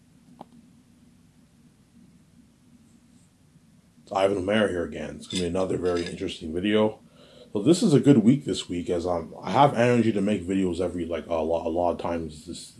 It's Ivan O'Mara here again. It's going to be another very interesting video. So this is a good week this week, as I have energy to make videos every a lot of times this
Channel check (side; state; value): both; identical; correlation 1.00